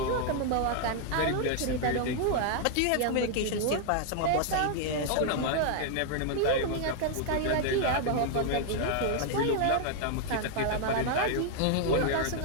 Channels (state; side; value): different; both; correlation 0.00